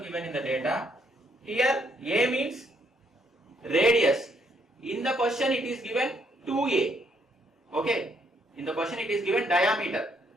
given in the data. Here A means radius. In the question it is given 2A. Okay. In the question it is given diameter.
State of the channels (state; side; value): normal; both; correlation 0.71